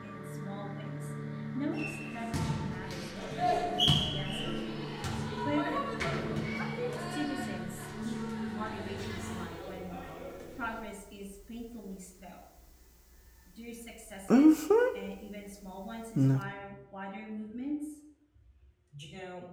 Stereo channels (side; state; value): both; identical; correlation 1.00